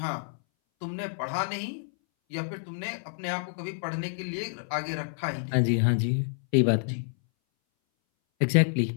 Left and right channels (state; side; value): silent; right; 59 dB below the other